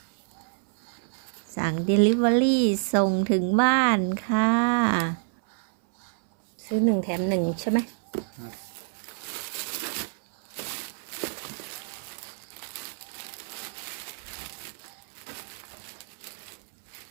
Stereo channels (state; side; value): silent; left; 60 dB below the other